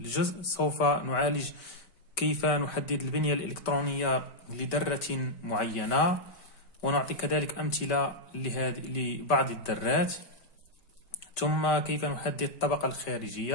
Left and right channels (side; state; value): right; late; 5.2 ms